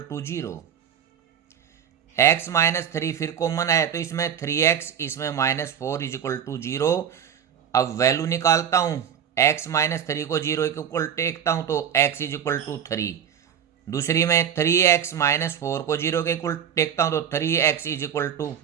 to 0। x minus 3 फिर कॉमन है तो इसमें 3x, इसमें -4 इज इक्वल टू 0। अब वैल्यू निकालता हूँ, x माइनस 3 को 0 के इक्वल टेकता हूँ तो x इज इक्वल टू 3। दूसरी में 3x माइनस 4 को 0 के इक्वल टेकता हूँ तो 3x इज इक्वल टू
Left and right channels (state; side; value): quieter; left; 8.7 dB